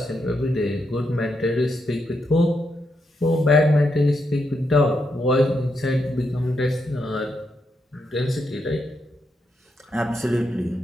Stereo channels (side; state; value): both; normal; correlation 0.82